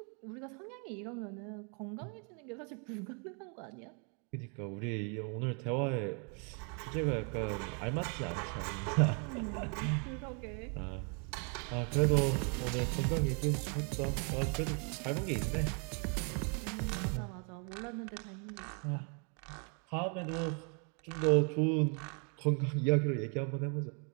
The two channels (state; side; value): quieter; left; 38.3 dB